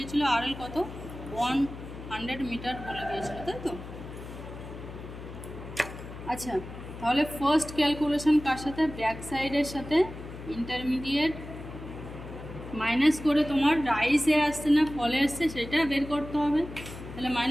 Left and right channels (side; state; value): left; noise; hum, 12 dB below the sound